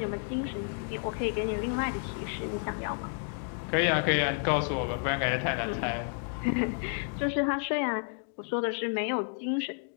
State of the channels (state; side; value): silent; right; 57 dB below the other